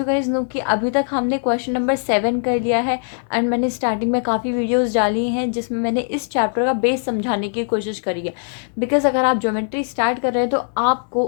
गाइज नो कि अभी तक हमने क्वेश्चन नंबर 7 कर लिया है एंड मैंने स्टार्टिंग में काफ़ी वीडियोस डाली हैं जिसमें मैंने इस चैप्टर का बेस समझाने की कोशिश करी है। बिकॉज अगर आप ज्योमेट्री स्टार्ट कर रहे हैं तो आपको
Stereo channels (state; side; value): silent; right; 63 dB below the other